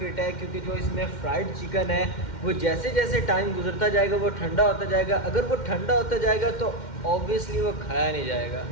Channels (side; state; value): right; late; 2.1 ms